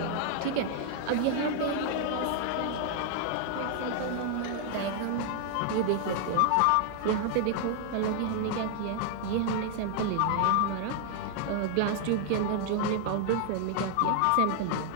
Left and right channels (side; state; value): both; different; correlation 0.00